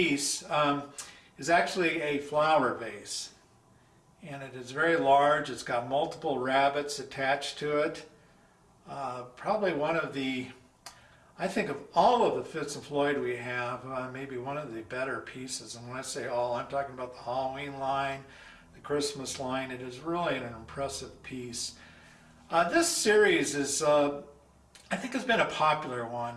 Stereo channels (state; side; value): identical; both; correlation 1.00